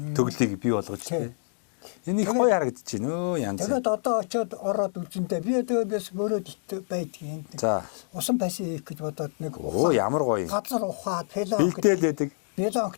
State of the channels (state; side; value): silent; right; digital silence